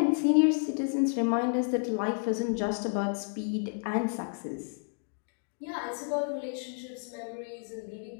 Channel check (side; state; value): right; silent; 57 dB below the other